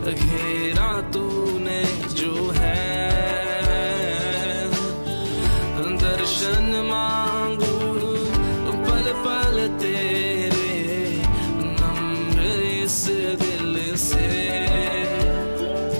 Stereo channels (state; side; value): inverted; both; correlation -1.00